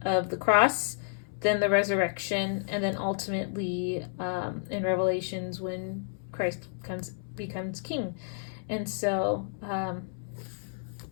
of the cross, then the resurrection, and then ultimately in Revelations when Christ becomes king. And so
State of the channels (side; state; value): right; silent; 57 dB below the other